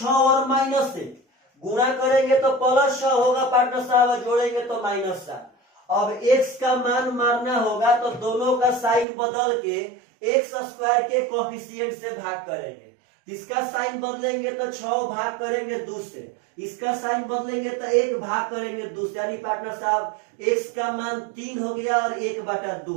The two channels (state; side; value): drops out; left; at 9.1 s